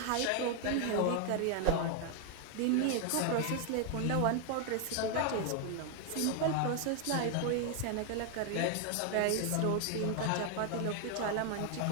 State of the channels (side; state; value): both; different; correlation 0.00